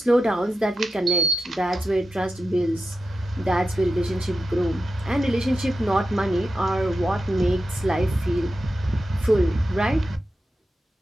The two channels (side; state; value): both; normal; correlation 0.90